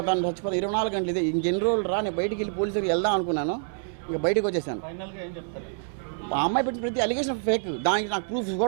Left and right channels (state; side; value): silent; left; digital silence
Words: 24 గంటలు ఇదే, ఇంకెన్ని రోజులు రా, నేను బయటికి వెళ్ళి పోలీసులకు వెళ్దాం అనుకున్నాను, ఇక బయటకు వచ్చేసాను. ఆ అమ్మాయి పెట్టిన ప్రతి అలిగేషన్ ఫేక్, దానికి నాకు ప్రూఫ్స్